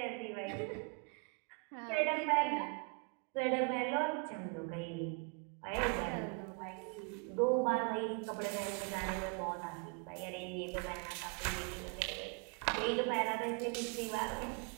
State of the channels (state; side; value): quieter; left; 33.3 dB